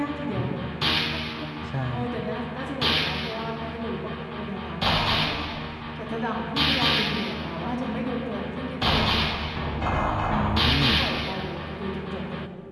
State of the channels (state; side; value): identical; both; correlation 1.00